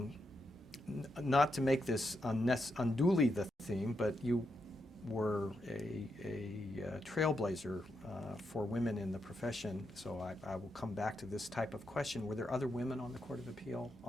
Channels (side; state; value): both; normal; correlation 0.83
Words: Not to make this unduly the theme, but you were a trailblazer for women in the profession, so I will come back to this type of question. Were there other women on the Court of Appeal